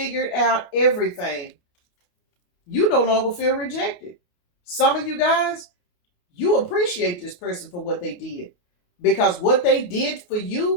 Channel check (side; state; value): right; late; 28 ms